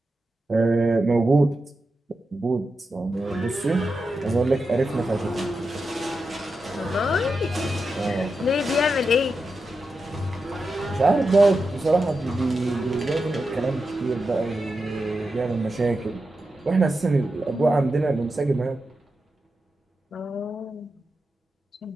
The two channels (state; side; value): normal; both; correlation 0.89